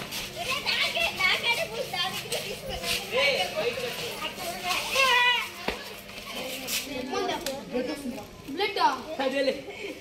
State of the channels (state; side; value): identical; both; correlation 1.00